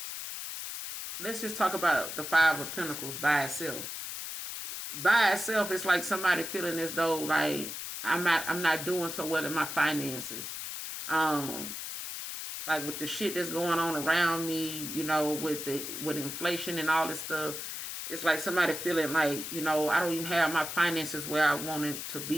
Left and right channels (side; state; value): left; noise; hiss, 6 dB below the sound